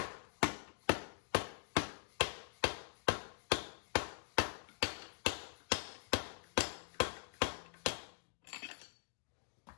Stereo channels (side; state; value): right; silent; digital silence